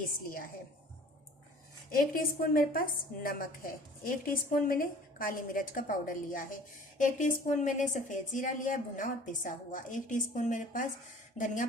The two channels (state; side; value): normal; both; correlation 0.48